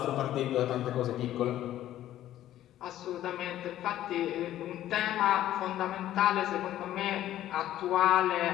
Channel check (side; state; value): right; quieter; 12.9 dB